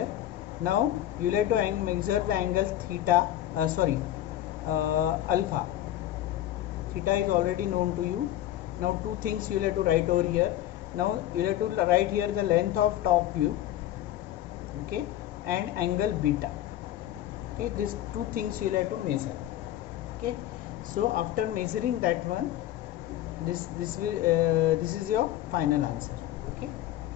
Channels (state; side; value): quieter; right; 13.2 dB